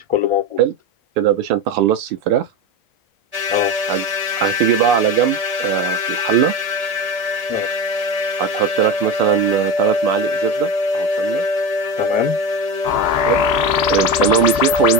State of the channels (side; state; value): left; late; 1.7 ms